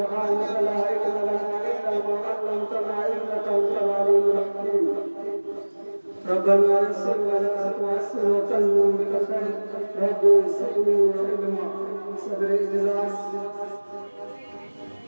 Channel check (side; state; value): both; inverted; correlation -1.00